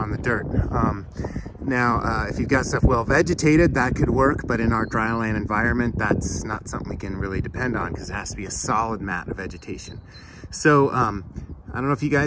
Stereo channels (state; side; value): identical; both; correlation 1.00